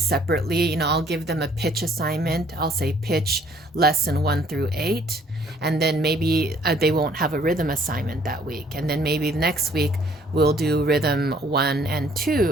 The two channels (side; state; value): both; normal; correlation 0.60